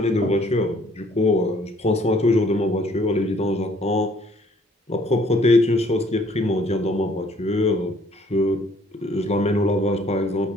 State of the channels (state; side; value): normal; both; correlation 0.61